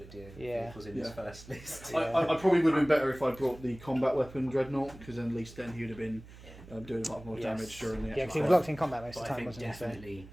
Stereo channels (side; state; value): right; noise; hum, 18 dB below the sound